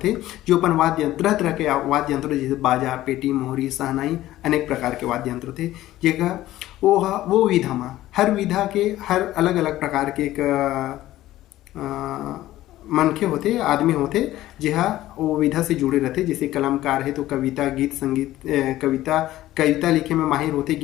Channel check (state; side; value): quieter; right; 15.0 dB